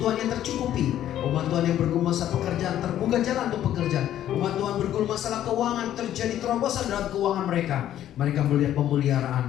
tercukupi. Umat Tuhan yang bergumul masalah pekerjaan, terbuka jalan untuk pekerjaan. Umat Tuhan bergumul masalah keuangan, terjadi terobosan dalam keuangan mereka. Mereka melihat pemeliharaan,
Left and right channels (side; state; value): right; quieter; 11.7 dB